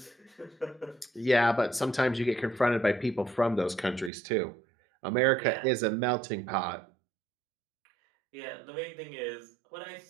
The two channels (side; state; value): left; drops out; at 4.1 s